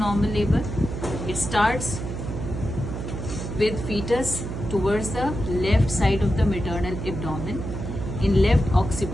labor. It starts with fetus towards the left side of the maternal abdomen in left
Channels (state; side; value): noise; right; hum, 6 dB below the sound